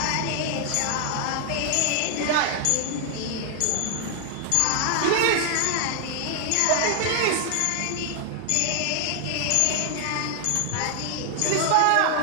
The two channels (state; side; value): different; both; correlation 0.00